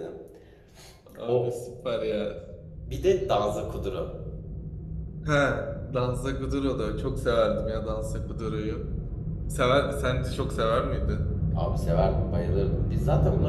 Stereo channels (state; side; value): identical; both; correlation 1.00